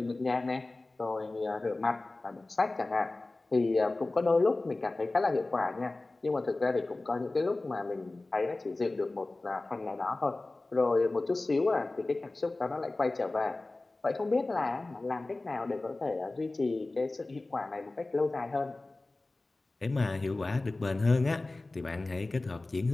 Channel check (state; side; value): quieter; right; 3.1 dB